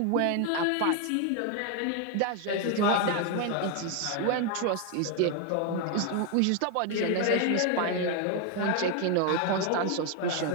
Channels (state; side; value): different; both; correlation 0.01